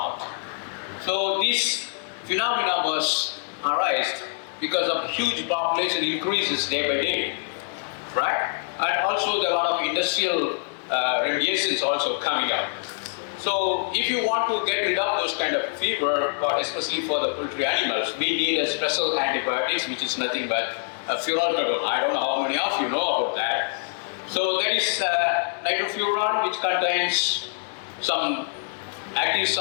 So this phenomena was arised because of huge population increases day by day, right? And also there are a lot of industrial radiations also coming up. So if you want to get rid of those kind of fever, or especially for the poultry animals, we need a special antibiotics, which is nothing but furalkadone. I don't know how many of you know about that. So there is nitrofuran, which contains some active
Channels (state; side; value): silent; right; digital silence